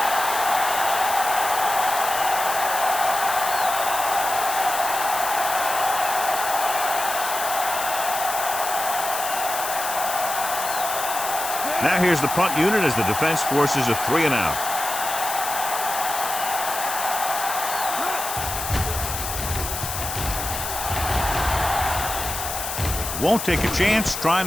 Now here's the punt unit as the defense forces a 3-and-out. Won't take a chance trying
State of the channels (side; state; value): left; noise; hiss, 5 dB below the sound